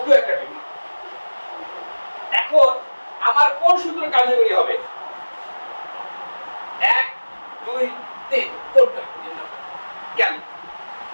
একটা টিউমার। এখন আমার কোন সূত্র কার্যকরী হবে? 1 2 3 কোনটা? কেন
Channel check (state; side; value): inverted; both; correlation -1.00